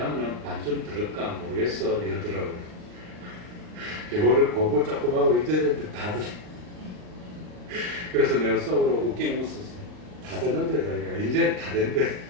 반쯤 들을까 모르겠어 이러더라고요. 영어를 공부 조금 하고 잊어졌는데 다 듣. 그래서 내가 속으로 웃긴 웃었어. 다 듣는데 자기가 이제 다 된대.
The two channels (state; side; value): late; left; 39 ms